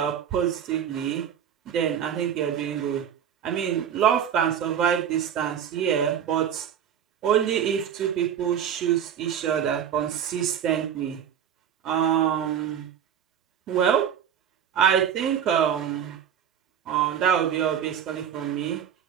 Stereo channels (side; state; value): left; quieter; 8.9 dB